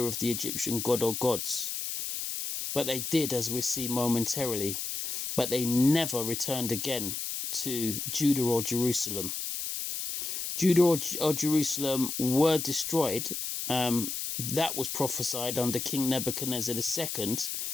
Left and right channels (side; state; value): left; noise; hiss, 4 dB below the sound